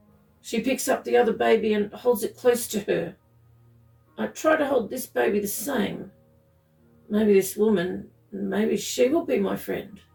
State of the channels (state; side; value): identical; both; correlation 1.00